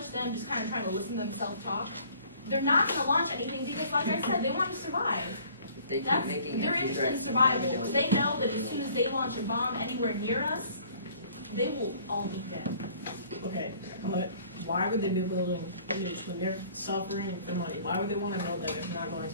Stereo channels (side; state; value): both; inverted; correlation -0.55